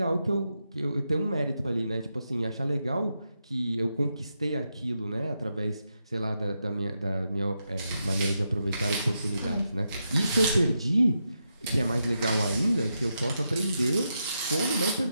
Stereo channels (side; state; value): both; inverted; correlation -0.85